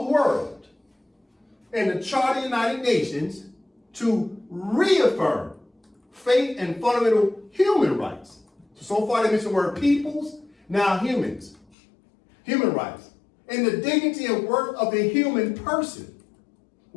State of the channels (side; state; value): right; drops out; at 11.7 s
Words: the world and the Charter of the United Nations to reaffirm faith and fundamental human rights. So far they mentioned the word peoples, now humans. Human rights. And the dignity and worth of the human person.